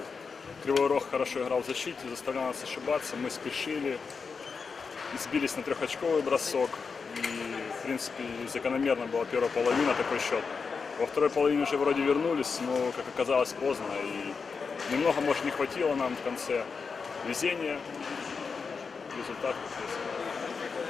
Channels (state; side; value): quieter; right; 5.2 dB